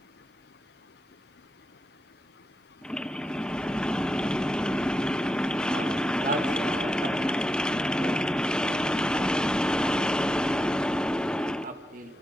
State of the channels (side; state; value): both; normal; correlation 0.87